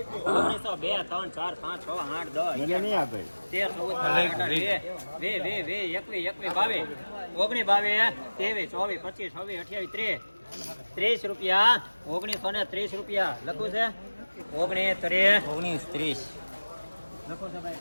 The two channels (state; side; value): inverted; both; correlation -1.00